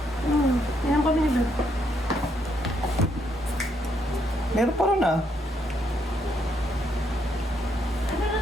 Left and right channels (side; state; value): both; normal; correlation 0.74